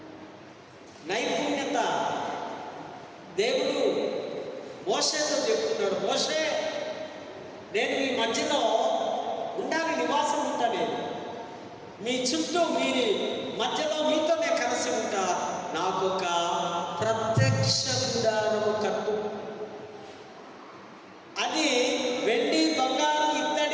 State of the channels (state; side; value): identical; both; correlation 1.00